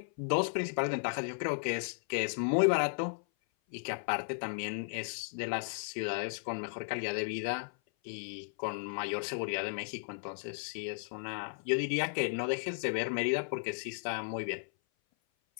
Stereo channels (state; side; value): silent; right; 54 dB below the other